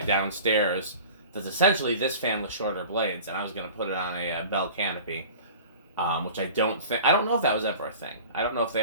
That's essentially this fan with shorter blades, and I was going to put it on a bell canopy, which I don't know if that was ever a thing. I don't know if they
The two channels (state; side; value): inverted; both; correlation -0.41